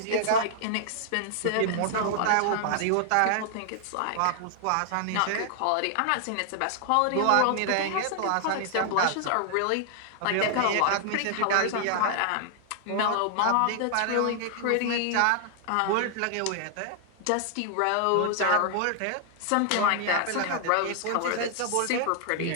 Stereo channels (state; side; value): different; both; correlation 0.00